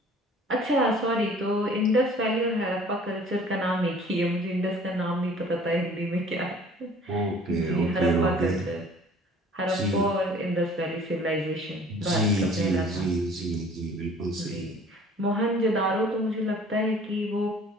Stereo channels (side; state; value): both; normal; correlation 0.51